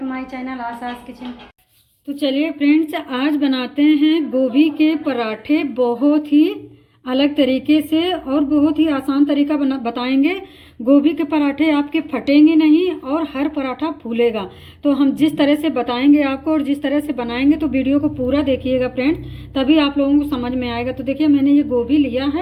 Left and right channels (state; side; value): identical; both; correlation 1.00